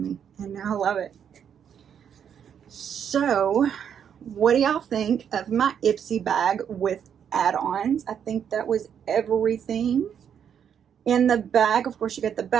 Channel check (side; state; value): left; quieter; 8.3 dB